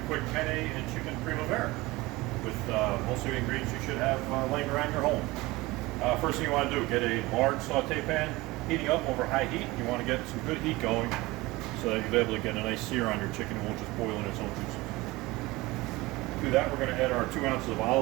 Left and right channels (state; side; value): quieter; left; 20.9 dB